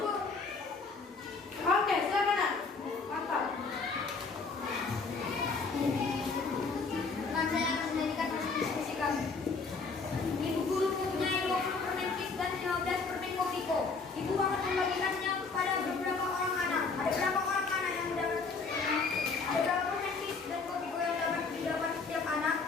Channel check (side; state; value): right; quieter; 4.4 dB